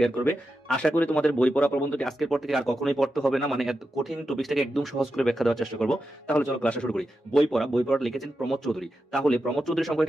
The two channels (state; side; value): normal; both; correlation 0.89